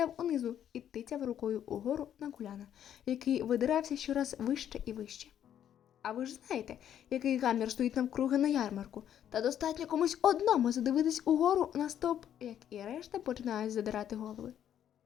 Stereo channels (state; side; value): quieter; right; 10.1 dB